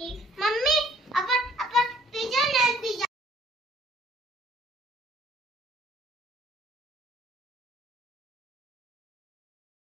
मम्मी आपण पिझ्जा नाही पिझ्जा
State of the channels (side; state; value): both; normal; correlation 0.59